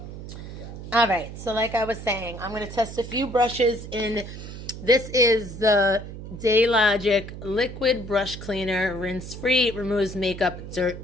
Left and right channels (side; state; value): right; noise; hum, 11 dB below the sound